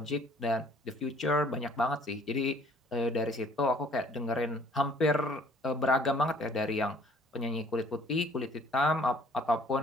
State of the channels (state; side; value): normal; both; correlation 0.58